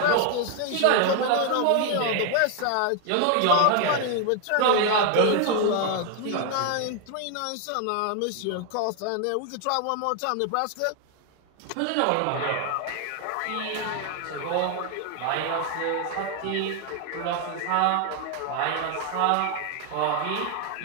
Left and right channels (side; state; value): both; different; correlation 0.00